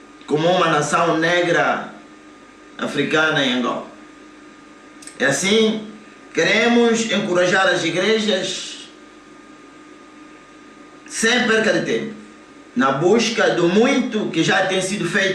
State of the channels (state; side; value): identical; both; correlation 1.00